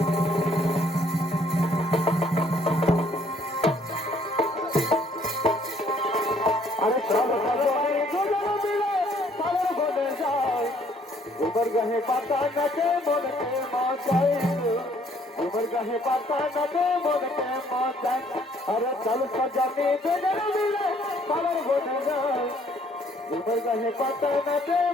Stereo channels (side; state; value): both; normal; correlation 0.63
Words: আরে সব সবাই দুজন মিলে সাগর বনে যায় উমর গাহে পাতা নাচে মনকে মজায় উমর গাহে পাতা নাচে মনকে মজায় আরে চল সজানে দুজন মিলে সাগর বনে যায় উমর গাহে পাতা নাচে